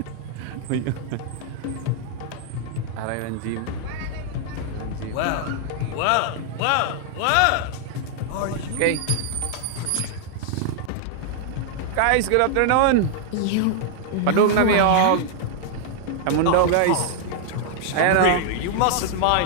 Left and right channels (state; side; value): different; both; correlation -0.01